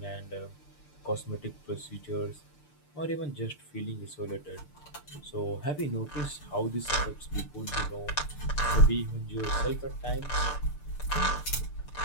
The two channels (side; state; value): right; late; 6.7 ms